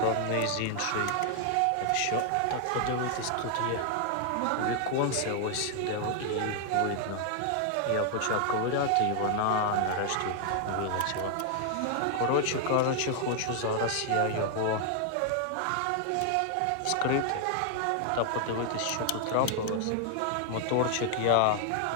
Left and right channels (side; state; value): both; different; correlation 0.00